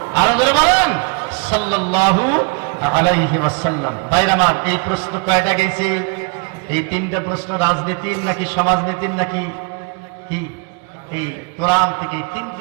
আরো জোরে বলেন সাল্লাল্লাহু আলাইহি ওয়াসাল্লাম। ভাইরা আমার, এই প্রশ্ন কয়টা গেছে? এই 3টা প্রশ্ন রাজনীতির নাকি সমাজনীতির নাকি কি? এই কোরআন থেকে এই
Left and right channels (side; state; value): left; quieter; 33.0 dB